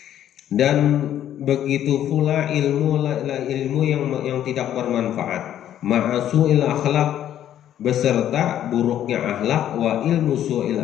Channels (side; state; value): right; quieter; 11.1 dB